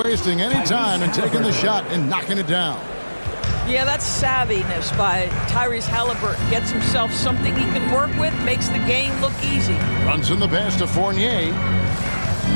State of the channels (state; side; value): inverted; both; correlation -1.00